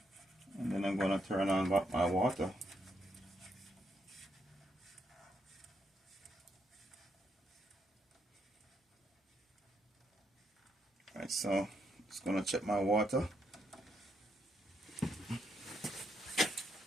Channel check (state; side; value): normal; both; correlation 0.77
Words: And then I'm gonna turn on my water. Alright, so just gonna check my water.